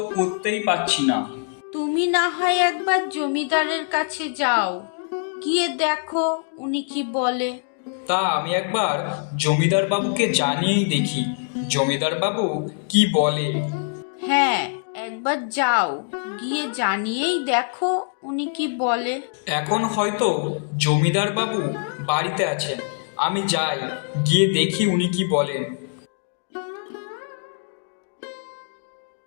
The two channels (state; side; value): silent; right; digital silence